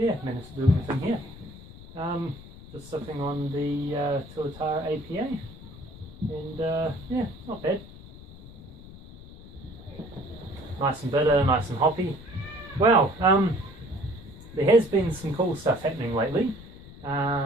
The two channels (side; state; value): left; noise; rumble, 17 dB below the sound